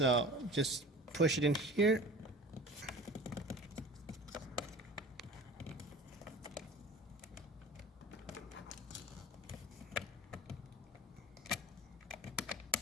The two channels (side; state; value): both; normal; correlation 0.40